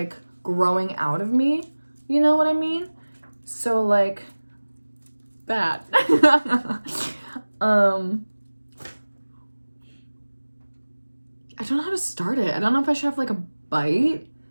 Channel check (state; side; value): inverted; both; correlation -1.00